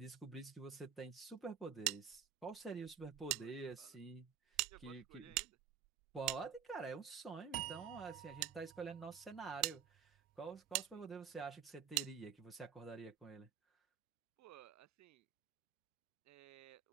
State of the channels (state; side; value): quieter; left; 8.6 dB